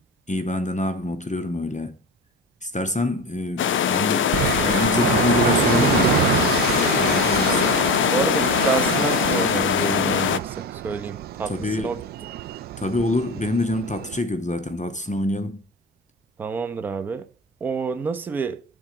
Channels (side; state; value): both; normal; correlation 0.25